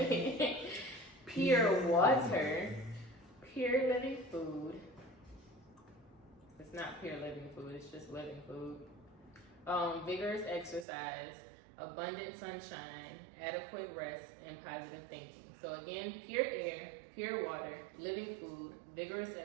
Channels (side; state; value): left; drops out; at 10.9 s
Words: pure water, pure living food. It's not pure living food, it's just living food. Vigorous exercise, abundant sunshine, adequate rest, and positive thinking. So again, pure air, pure water, living food, vigorous